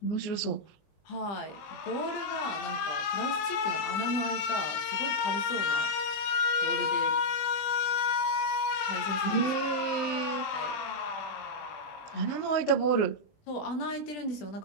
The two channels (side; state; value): right; late; 20 ms